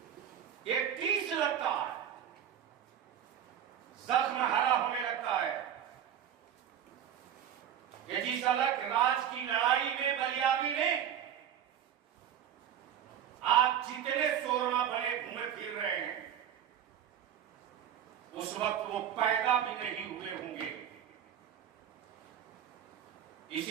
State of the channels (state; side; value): quieter; left; 9.6 dB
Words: एक टीस लगता है, जख्म हरा होने लगता है। ये जिस अलग राज की लड़ाई में बलियाबी ने आज जितने शोरमा भले घूमे फिर रहे हैं, उस वक्त वो पैदा भी नहीं हुए होंगे।